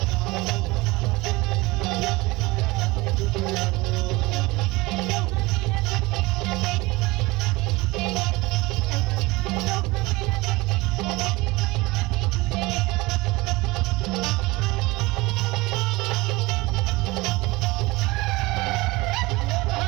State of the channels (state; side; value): quieter; left; 22.0 dB